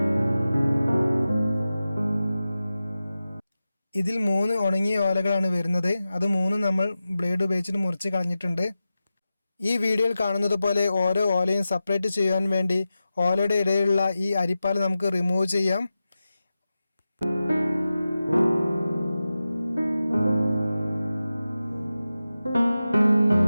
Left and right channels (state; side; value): inverted; both; correlation -0.93